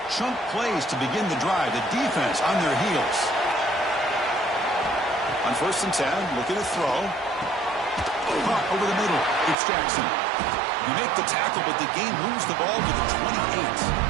chunk plays to begin the drive. The defense on their heels. On first and 10, looking to throw. Caught over the middle. It's Jackson. You make the tackle, but the game moves the ball to the 28.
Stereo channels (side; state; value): left; drops out; at 9.6 s